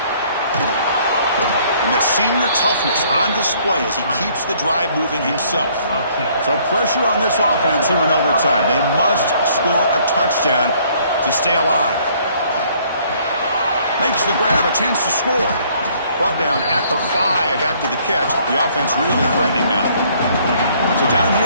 And that senior toughness on display as he keeps the drive moving himself. So pressure on this offense here in overtime. They must score a touchdown to stay alive. Makes the grab, a chance to score. Brought down at the 5 after the catch. The offense really threatening now. So down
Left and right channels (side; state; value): both; inverted; correlation -0.62